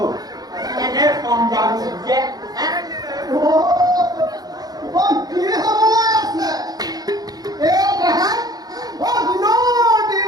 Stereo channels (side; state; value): left; late; 0.19 ms